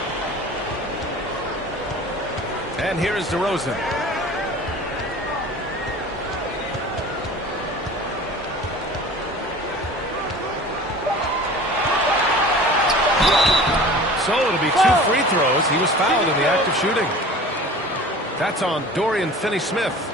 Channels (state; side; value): normal; both; correlation 0.41